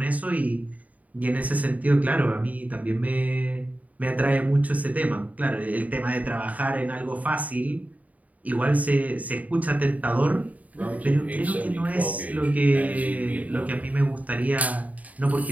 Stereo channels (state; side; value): late; left; 0.072 ms